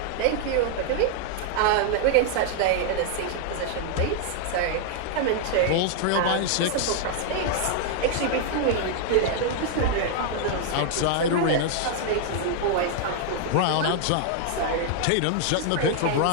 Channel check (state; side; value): different; both; correlation 0.00